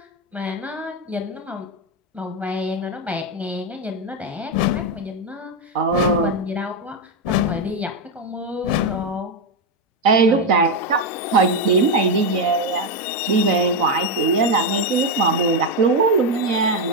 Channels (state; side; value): normal; both; correlation 0.06